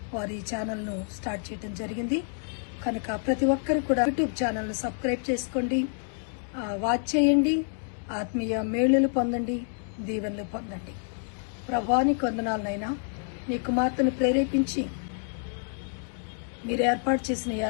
వారు ఈ ఛానల్ను స్టార్ట్ చేయడం జరిగింది. కనుక ప్రతి ఒక్కరు కూడా యూట్యూబ్ ఛానల్ను సబ్స్క్రైబ్ చేసుకోండి, వాచ్ చేయండి, ఆత్మీయ మేలులు పొందండి, దీవెనలు పొందండి. ప్రభువానికి వందనాలనైనా నీ కుమార్తెను ప్రేరేపించి మీరు ఏర్పాటు చేసిన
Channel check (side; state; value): right; silent; 58 dB below the other